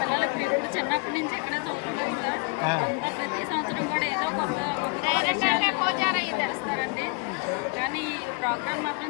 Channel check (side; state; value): right; quieter; 30.2 dB